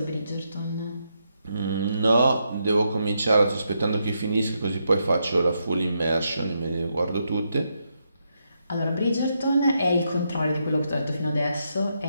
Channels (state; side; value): inverted; both; correlation -0.81